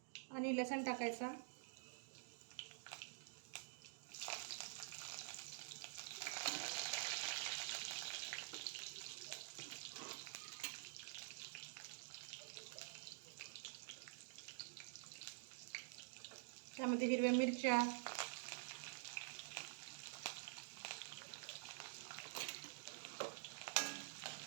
आणि लसूण टाकायचा. त्यामध्ये हिरव्या मिरच्या,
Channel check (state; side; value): silent; left; digital silence